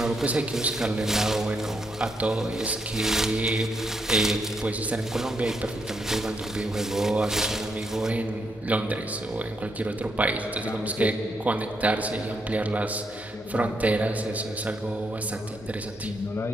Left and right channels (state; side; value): normal; both; correlation 0.78